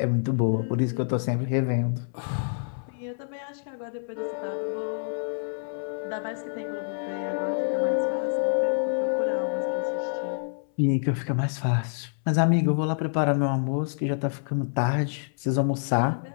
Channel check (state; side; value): silent; right; 60 dB below the other